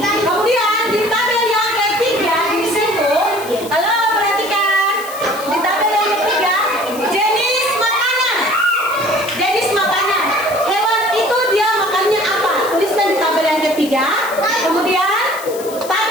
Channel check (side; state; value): left; noise; hiss, 14 dB below the sound